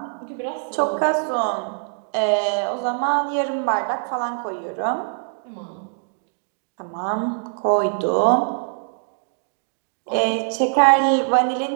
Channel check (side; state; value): left; silent; digital silence